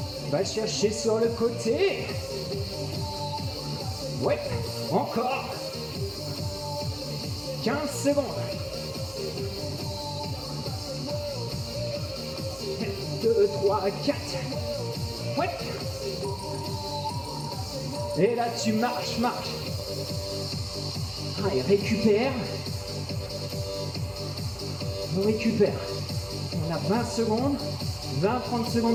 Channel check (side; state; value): both; identical; correlation 1.00